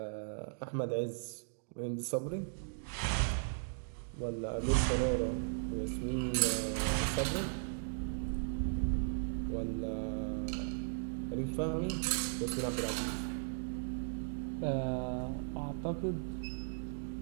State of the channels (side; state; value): left; silent; digital silence